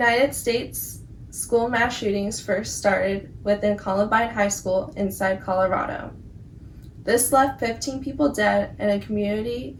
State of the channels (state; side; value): identical; both; correlation 1.00